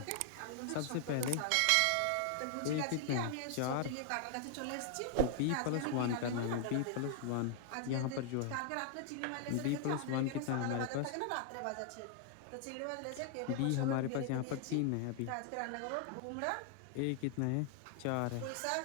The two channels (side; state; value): both; different; correlation 0.00